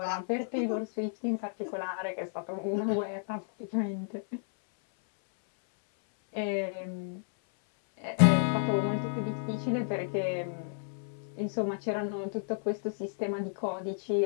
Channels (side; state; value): right; silent; 57 dB below the other